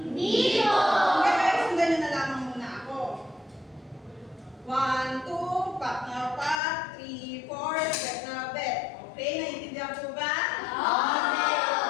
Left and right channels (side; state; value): right; drops out; at 6.6 s